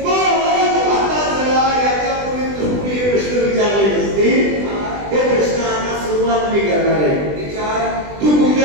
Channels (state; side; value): late; left; 20 ms